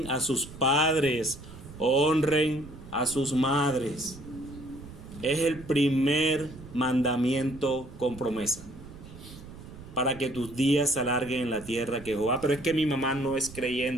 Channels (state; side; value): noise; right; rumble, 16 dB below the sound